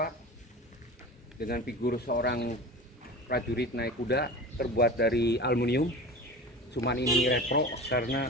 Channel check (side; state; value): both; normal; correlation 0.33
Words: dengan figur seorang prajurit naik kuda terbuat dari aluminium. Cuman ini retro